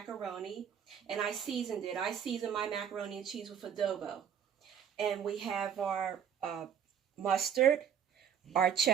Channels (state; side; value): quieter; left; 8.3 dB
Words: and I seasoned it. I seasoned my macaroni and cheese with adobo. And we have our mustard, our